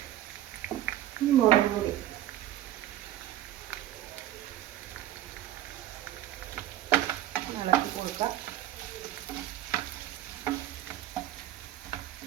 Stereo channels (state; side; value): quieter; left; 13.1 dB